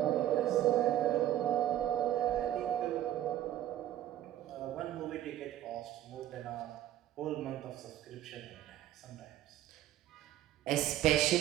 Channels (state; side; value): quieter; left; 12.8 dB